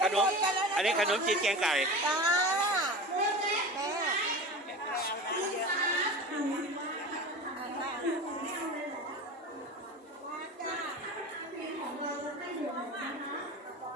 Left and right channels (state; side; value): normal; both; correlation 0.31